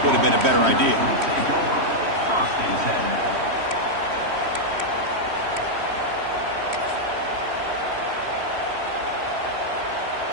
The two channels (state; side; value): late; left; 3.1 ms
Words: would have been a better idea.